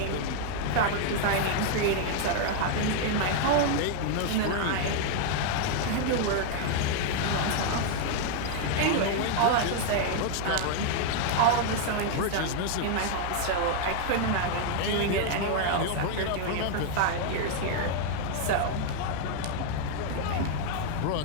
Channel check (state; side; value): different; both; correlation 0.00